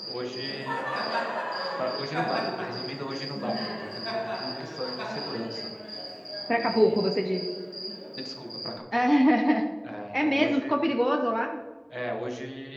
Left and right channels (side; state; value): both; identical; correlation 1.00